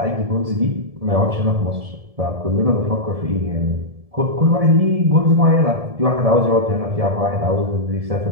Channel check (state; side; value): late; left; 1.7 ms